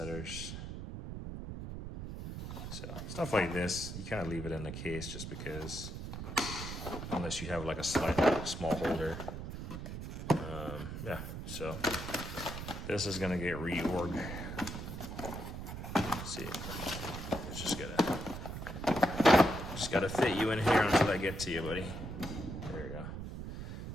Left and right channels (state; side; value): noise; right; rumble, 7 dB below the sound